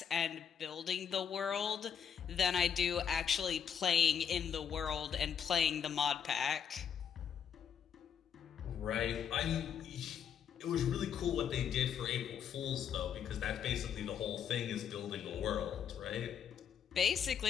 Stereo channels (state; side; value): quieter; right; 8.0 dB